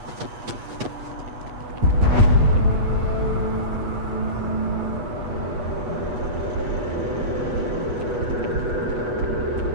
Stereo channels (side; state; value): left; late; 8.2 ms